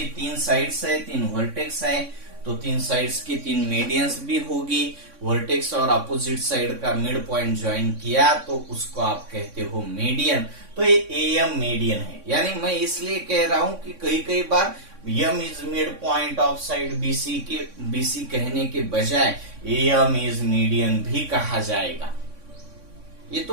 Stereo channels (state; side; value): late; left; 3.6 ms